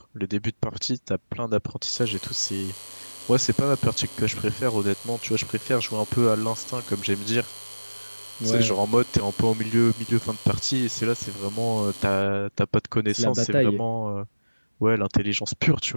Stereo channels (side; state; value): both; inverted; correlation -1.00